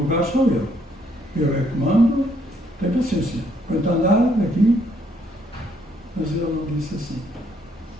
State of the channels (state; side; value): normal; both; correlation 0.69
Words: lugar sou eu. Eu é que mando, tem paciência. Quanto andar aqui, mas ele não disse assim.